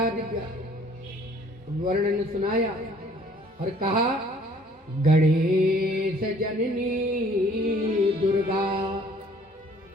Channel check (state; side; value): normal; both; correlation 0.57